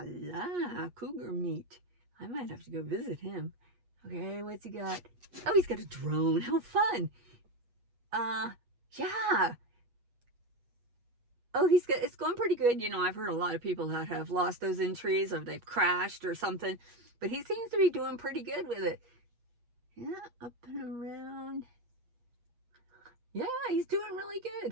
la, cougar meat. I might have to go visit him. Okay, what's he got? Oh, he's got a drone. How fun. Yeah. Oh, it's going pretty good. You know, I've heard a lot of people that have lost those entries or they've crashed or something, but he seems to be doing pretty good with it. Yeah, up and around. Yeah, he's doing really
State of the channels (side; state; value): left; late; 8.4 ms